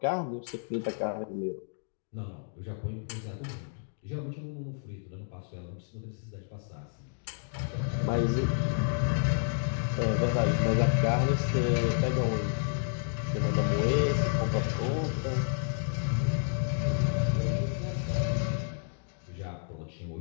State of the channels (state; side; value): silent; right; digital silence